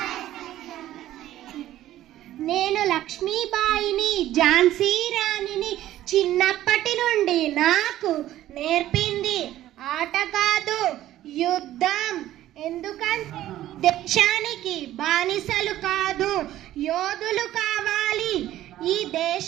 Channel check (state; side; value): quieter; left; 13.7 dB